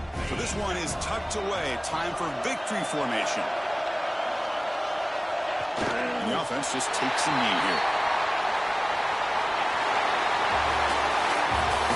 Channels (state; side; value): identical; both; correlation 1.00